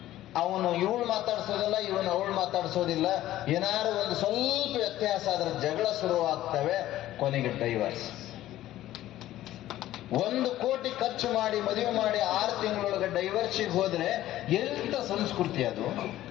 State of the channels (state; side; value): quieter; right; 14.2 dB